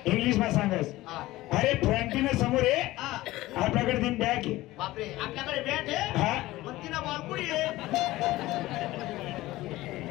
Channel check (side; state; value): right; quieter; 17.6 dB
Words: इंग्लिश मध्ये सांगस. अरे फ्रंटीनं समोर आहे आपल्याकडे तीन बॅग आहे. बापरे आपल्याकडे बॅट आहे. हा मग तिला बॉल कुठे आहे.